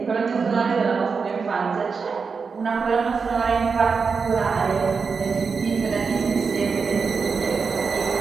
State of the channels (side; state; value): left; quieter; 5.2 dB